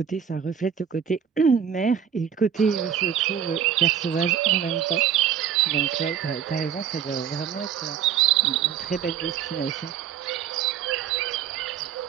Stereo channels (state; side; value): quieter; left; 8.5 dB